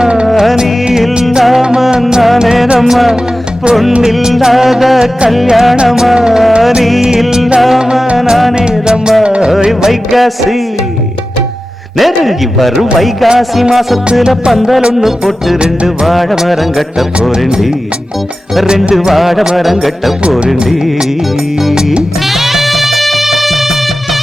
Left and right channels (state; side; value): normal; both; correlation 0.94